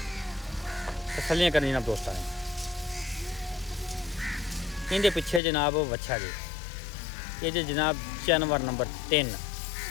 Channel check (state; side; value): drops out; right; at 5.4 s